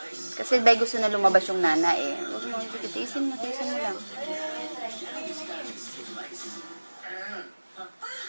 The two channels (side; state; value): both; inverted; correlation -1.00